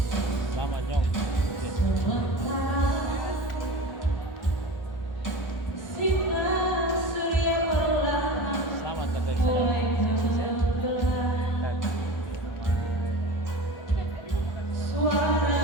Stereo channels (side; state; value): right; late; 1.4 ms